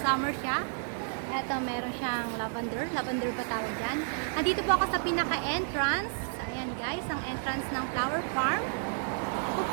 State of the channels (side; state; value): left; silent; digital silence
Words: siya. Eto, meron siyang lavender. Lavender ba tawag dyan? Nandito po ako sa pinaka-entrance. Ayan guys, ang entrance ng flower farm.